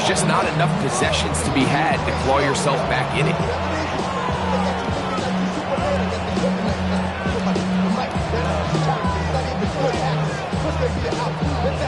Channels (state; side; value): identical; both; correlation 1.00